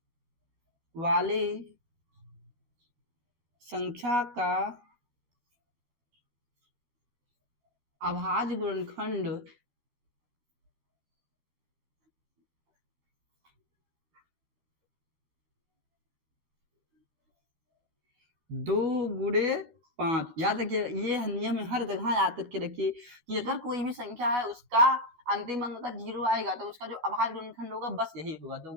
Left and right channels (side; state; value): left; late; 12 ms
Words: वाले संख्या का अभाज्य गुणनखंड 2 गुणे 5। याद रखिए, ये नियम हर जगह याद करके रखिए कि अगर कोई भी संख्या है उसका अंतिम अंक अगर 0 आएगा तो उसका जो अभाज्य गुणनखंड होगा बस यही होगा, 2